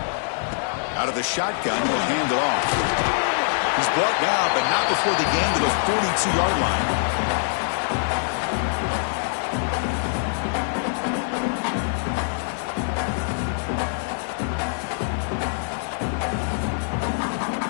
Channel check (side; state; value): right; silent; 63 dB below the other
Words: Out of the shotgun, he'll hand it off. He's brought down, but not before the gain to the 42-yard line.